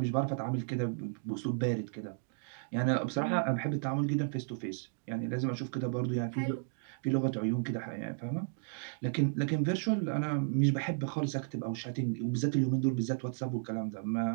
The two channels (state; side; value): silent; left; digital silence